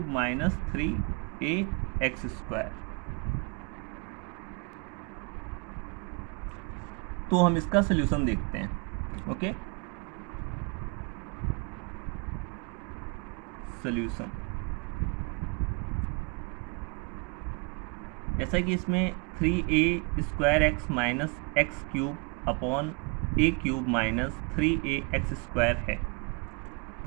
minus 3a x square. तो हम इसका सॉल्यूशन देखते हैं। ओके, सॉल्यूशन जैसा कि इसमें 3a square x minus x cube upon a cube minus 3a x square है,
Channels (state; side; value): quieter; left; 33.1 dB